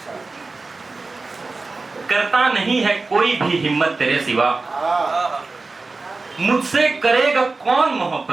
करता नहीं है कोई भी हिम्मत तेरे सिवा, मुझसे करेगा कौन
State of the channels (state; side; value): quieter; left; 3.7 dB